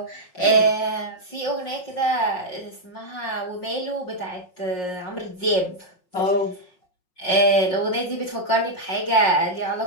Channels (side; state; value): right; late; 5.5 ms